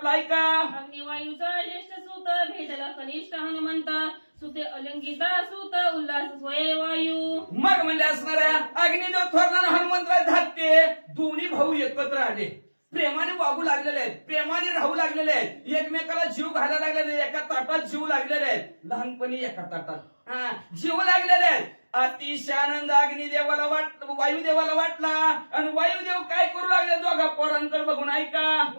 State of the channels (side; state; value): both; inverted; correlation -1.00